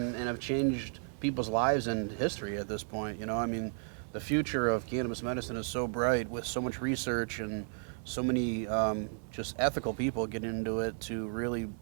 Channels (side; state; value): left; silent; 55 dB below the other